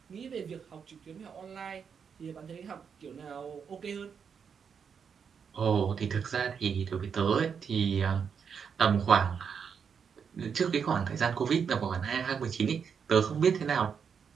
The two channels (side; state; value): left; quieter; 6.7 dB